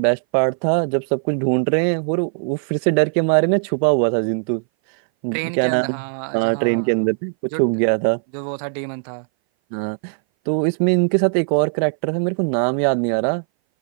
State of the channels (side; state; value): left; silent; 60 dB below the other